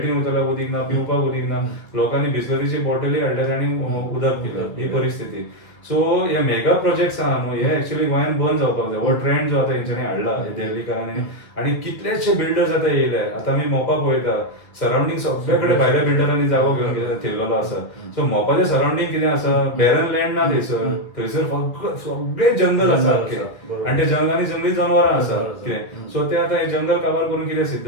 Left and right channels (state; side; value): late; right; 1.6 ms